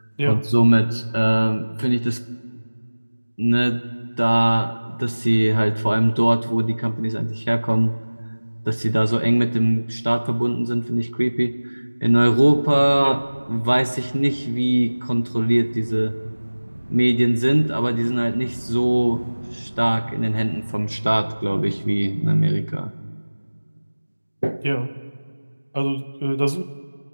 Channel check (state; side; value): inverted; both; correlation -1.00